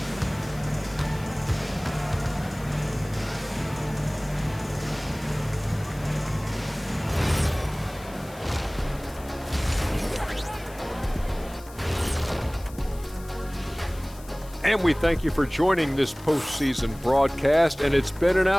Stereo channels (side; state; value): left; noise; hiss, 21 dB below the sound